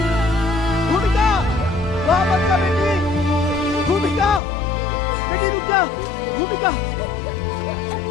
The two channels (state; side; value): drops out; right; at 4.4 s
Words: भूमिका, वहाँ मत जा बेटी, भूमिका, बेटी रुक जा, भूमिका,